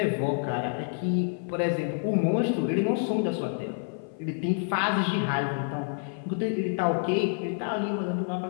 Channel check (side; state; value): right; silent; 57 dB below the other